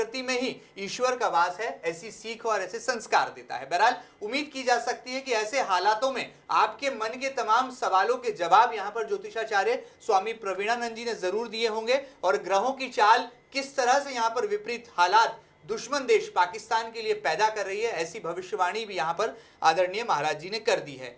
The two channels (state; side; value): identical; both; correlation 1.00